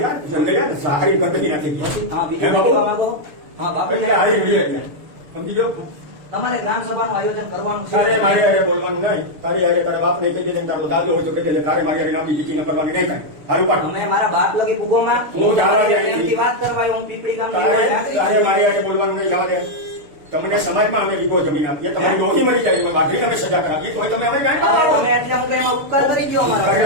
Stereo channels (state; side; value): late; left; 6.7 ms